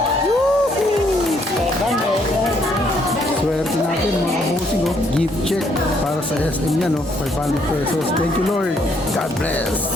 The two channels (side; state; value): both; normal; correlation 0.70